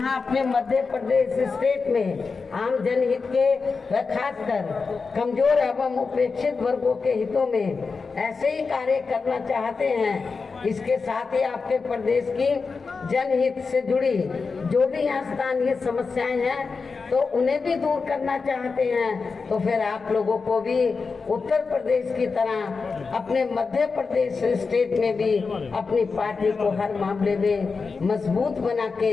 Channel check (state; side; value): quieter; right; 4.7 dB